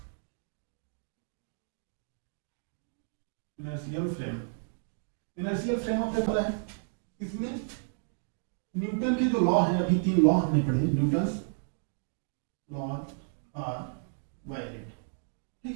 inertial frame, inertial frame of reference है। इसमें न्यूटन के जो लॉ हैं, अभी 3 लॉ हमने पढ़े, न्यूटन्स लॉ आर वैलिड,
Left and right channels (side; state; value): left; silent; digital silence